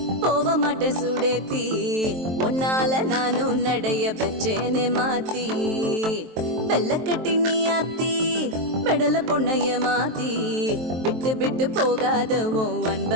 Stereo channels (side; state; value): left; late; 23 ms